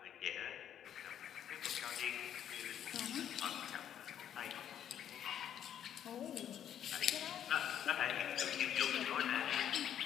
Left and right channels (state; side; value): quieter; right; 9.9 dB